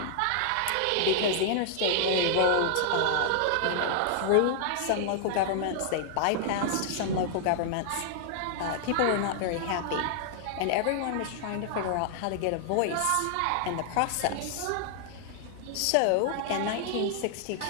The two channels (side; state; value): both; different; correlation -0.01